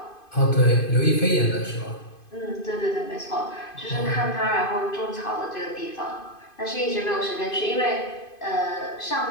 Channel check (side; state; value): right; late; 2.5 ms